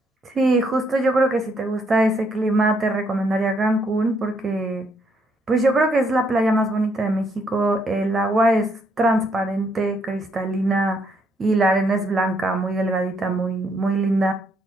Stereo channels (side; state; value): both; normal; correlation 0.72